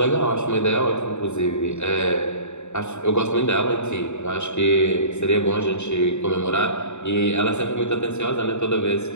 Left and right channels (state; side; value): late; right; 0.83 ms